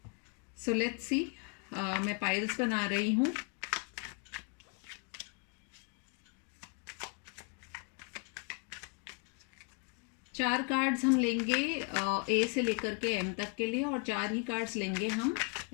So let's see. मैं पाइल्स बना रही हूँ। चार कार्ड्स हम लेंगे ए से लेकर के एम तक के लिए और चार ही कार्ड्स लेंगे हम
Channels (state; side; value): quieter; right; 34.2 dB